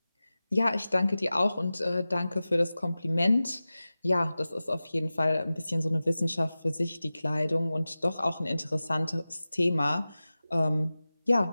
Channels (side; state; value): both; inverted; correlation -0.96